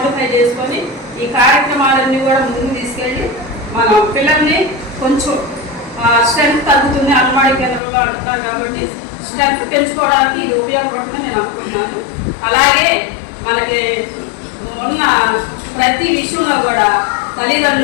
చేసుకొని ఈ కార్యక్రమాలన్నీ కూడా ముందుకు తీసుకెళ్ళి మనం పిల్లల్ని కొంచెం స్ట్రెంత్ తగ్గుతుంది అంగన్వాడీ కేంద్రంలో అంటున్నారు కాబట్టి స్ట్రెంత్ పెంచుకోవడానికి ఇది ఉపయోగపడుతుందని నేను అనుకుంటున్నాను. అలాగే మనకి ఉన్న ప్రతి విషయంలో కూడా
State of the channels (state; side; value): drops out; right; at 7.8 s